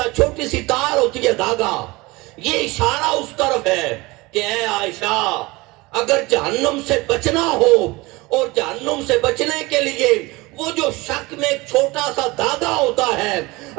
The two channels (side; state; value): left; quieter; 22.6 dB